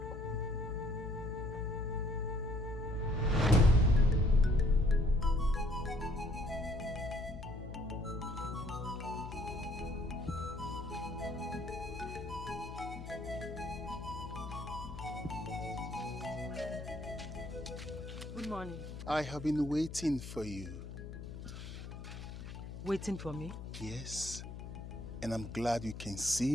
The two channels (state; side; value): noise; left; hum, 9 dB below the sound